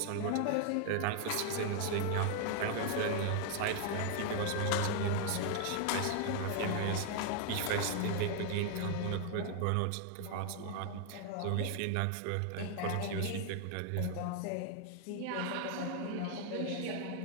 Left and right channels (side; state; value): both; different; correlation 0.00